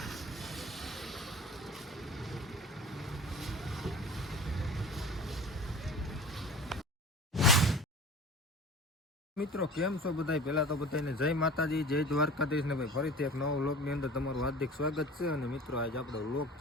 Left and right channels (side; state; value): both; normal; correlation 0.38